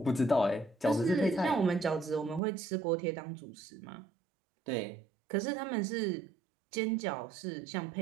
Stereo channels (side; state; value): left; drops out; at 2.4 s